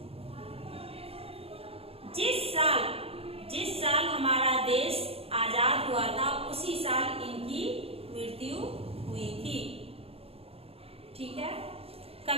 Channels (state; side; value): late; left; 0.28 ms